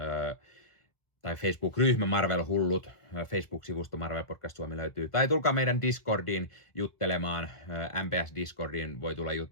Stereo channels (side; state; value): right; late; 1.4 ms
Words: tai Facebook-ryhmä Marvel Hullut, Facebook-sivusto Marvel Podcast Suomi löytyy. Tai tulkaa meidän Discordiin juttelemaan, MPS Discordiin voi tulla